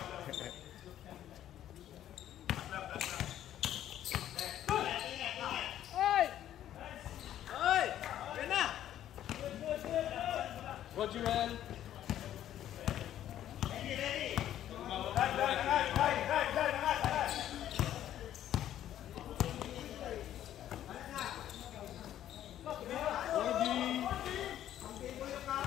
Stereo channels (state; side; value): quieter; right; 11.7 dB